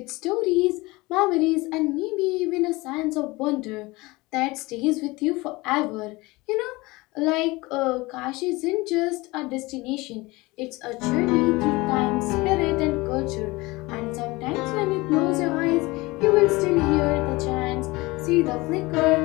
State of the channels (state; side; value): quieter; right; 22.3 dB